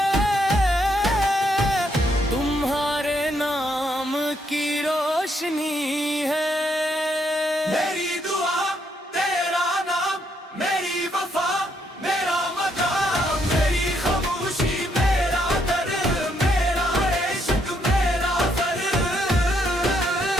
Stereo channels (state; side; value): normal; both; correlation 0.74